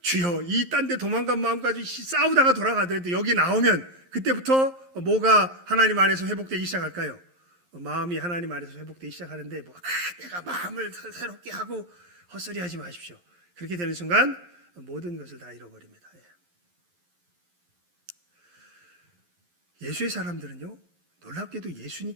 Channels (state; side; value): late; left; 11 ms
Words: 주여, 이 딴 데 도망간 마음까지 싸우다가 돌아가더라도 여기 나오면 그때부터 뭐가 하나님 안에서 회복되기 시작할까요? 마음이 하나님 안에서 회복되기 시작하는데, 내가 마음을 새롭게 하고 헛소리 하지 마십시오. 그렇게 되는 순간 모든 것을 다 잃어버립니다. 예수의 사람들은요, 놀랍게도